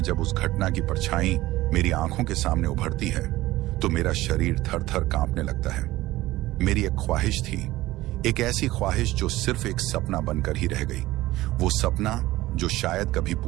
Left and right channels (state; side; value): quieter; left; 17.2 dB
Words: जब उस घटना की परछाई मेरी आंखों के सामने उभरती है तो मेरा शरीर थर थर कांपने लगता है। मेरी एक ख्वाहिश थी, एक ऐसी ख्वाहिश जो सिर्फ एक सपना बनकर ही रह गई। वो सपना जो शायद कभी